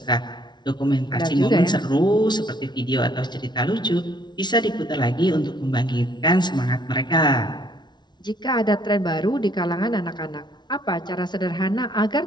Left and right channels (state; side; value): late; right; 0.21 ms